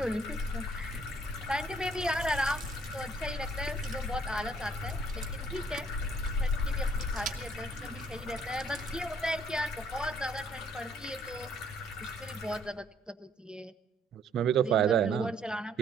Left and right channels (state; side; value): normal; both; correlation 0.64